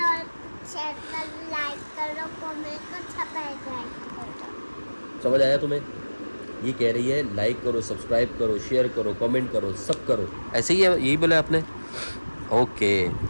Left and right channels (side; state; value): both; inverted; correlation -1.00